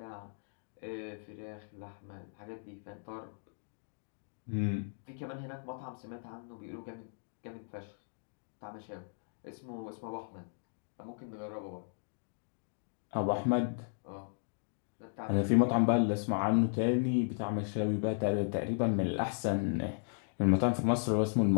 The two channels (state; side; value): silent; right; digital silence